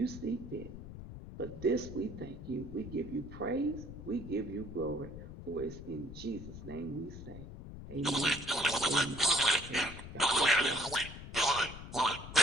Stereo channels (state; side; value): noise; left; rumble, 12 dB below the sound